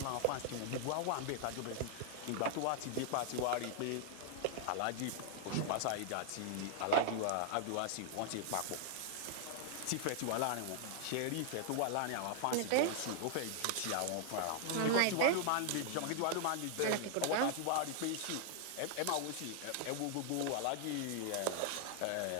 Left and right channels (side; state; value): both; different; correlation 0.00